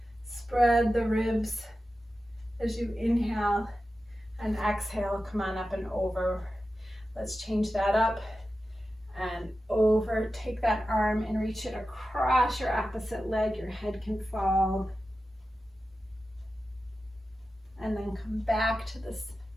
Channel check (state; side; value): normal; both; correlation 0.93